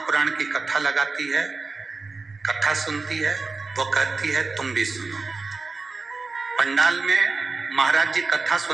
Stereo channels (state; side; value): quieter; left; 4.0 dB